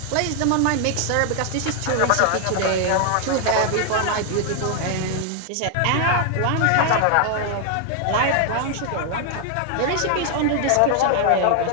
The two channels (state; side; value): different; both; correlation 0.00